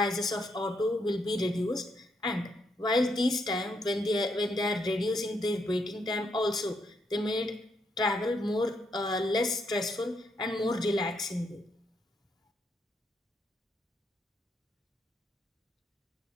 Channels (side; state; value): both; normal; correlation 0.77